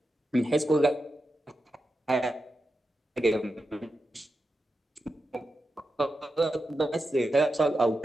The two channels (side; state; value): both; normal; correlation 0.89